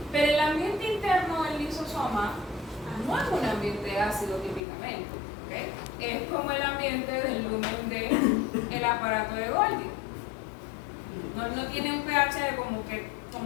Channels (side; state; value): right; drops out; at 4.6 s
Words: Pero el ambiente interno del lisosoma no es un ambiente ácido típicamente, ¿okay? Es como el ambiente del lumen del aparato de Golgi. No tiene un pH